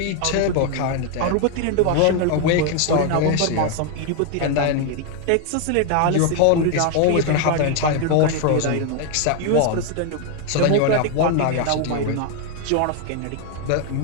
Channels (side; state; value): both; different; correlation 0.01